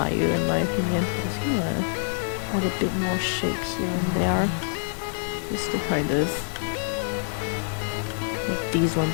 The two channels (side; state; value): right; silent; digital silence